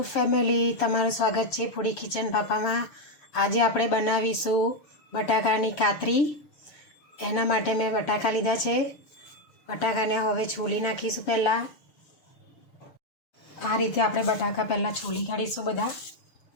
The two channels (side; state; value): right; late; 6.7 ms